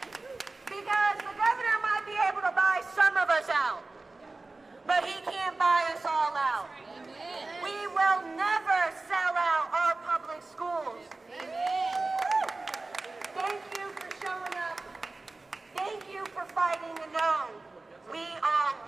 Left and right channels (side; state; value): left; quieter; 3.4 dB